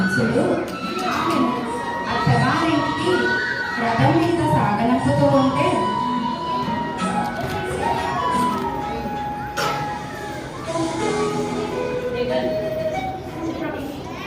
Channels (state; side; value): identical; both; correlation 1.00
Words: ఆమెను అత్తగారింటికి రథం మీద సాగనంపుతూ ఉంటే